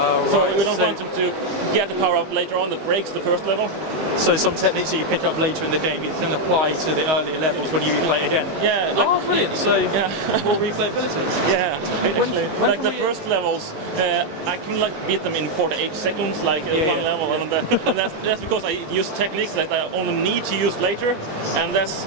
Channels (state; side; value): late; left; 19 ms